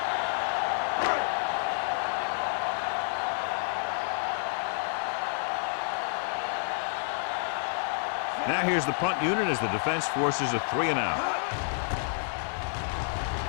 Now here's the punt unit as the defense forces a 3-and-out.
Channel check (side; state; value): right; silent; digital silence